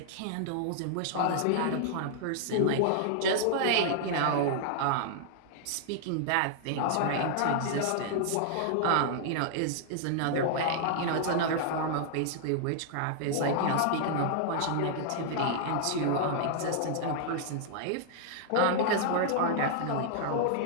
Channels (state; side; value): different; both; correlation -0.01